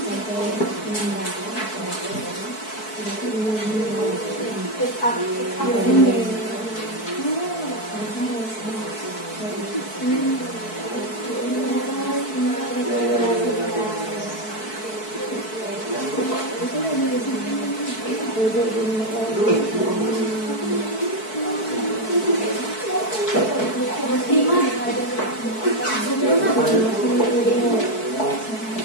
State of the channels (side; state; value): right; late; 4.6 ms